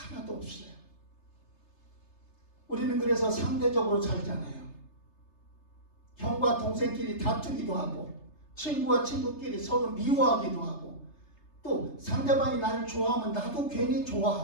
없어요. 우리는 그래서 상대적으로 살잖아요. 형과 동생끼리 다투기도 하고 친구와 친구끼리 서로 미워하기도 하고 또 상대방이 나를 좋아하면 나도 괜히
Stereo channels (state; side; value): late; right; 3.3 ms